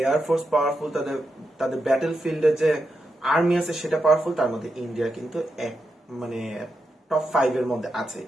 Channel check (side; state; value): both; normal; correlation 0.86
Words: এয়ারফোর্স পাওয়ারফুল, তাদের তাদের ব্যাটল ফিল্ডে যে আর্মি আছে সেটা পাওয়ারফুল। তার মধ্যে ইন্ডিয়া কিন্তু এক মানে টপ 5 এর মধ্যে আছে,